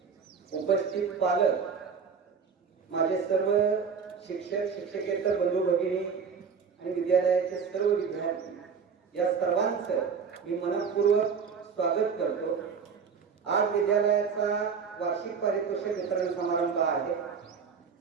उपस्थित पालक, माझे सर्व शिक्षक शिक्षकेतर बंधू भगिनी आणि विद्यालयाचे सर्व विद्यार्थी, या सर्वांचं मी मनपूर्वक स्वागत करतो। आज विद्यालयाचा वार्षिक पारितोषिक वितरण समारंभ आहे।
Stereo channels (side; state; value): left; quieter; 6.0 dB